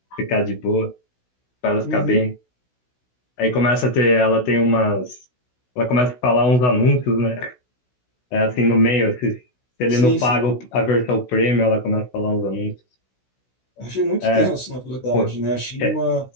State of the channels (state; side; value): late; right; 16 ms